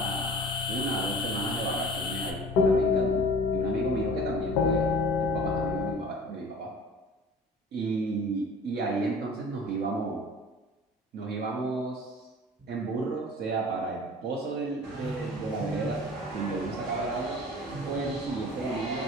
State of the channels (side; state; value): both; normal; correlation 0.43